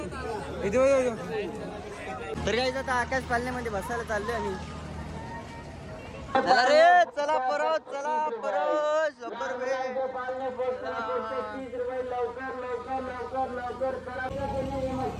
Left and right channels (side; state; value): both; identical; correlation 1.00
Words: तर काय आता आकाश पालण्यामध्ये बसायला चाललोय आम्ही. चला रे चला परत 100 रुपये.